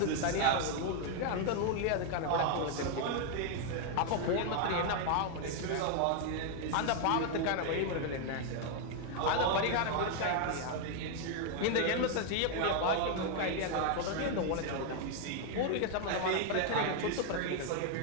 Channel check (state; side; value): different; both; correlation 0.00